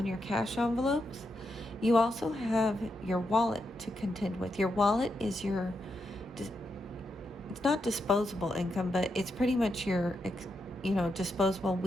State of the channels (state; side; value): normal; both; correlation 0.83